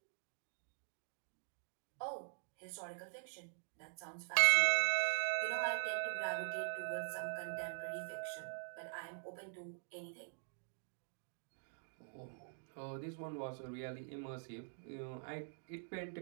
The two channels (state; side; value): silent; left; digital silence